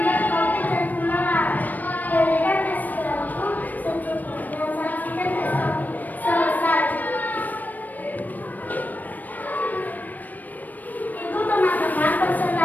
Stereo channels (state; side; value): late; right; 0.084 ms